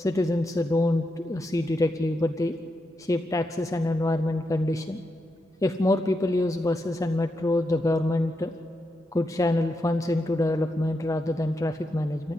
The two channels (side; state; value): both; normal; correlation 0.85